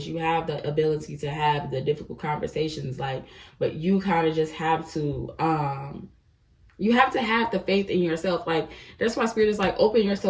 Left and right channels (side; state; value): both; identical; correlation 1.00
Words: you have the ability to have the difficult conversations, like, but you kind of just have to you have to have the faith in yourself. Like, that's why Spirit is like, open